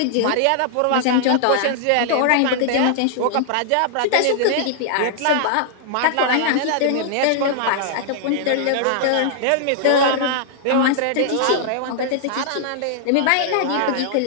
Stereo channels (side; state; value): both; different; correlation -0.01